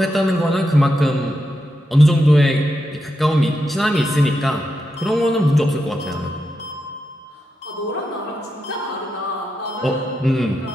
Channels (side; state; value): both; normal; correlation 0.86